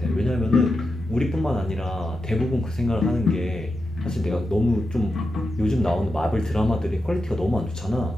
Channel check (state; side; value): normal; both; correlation 0.88